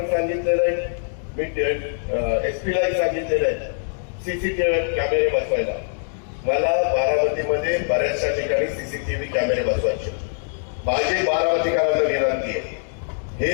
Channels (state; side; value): silent; right; digital silence